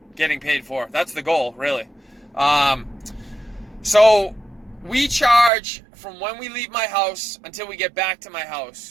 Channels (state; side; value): drops out; left; at 5.5 s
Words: getting paid for. That's the goal, really. So we charge from when we leave my house until we get back to my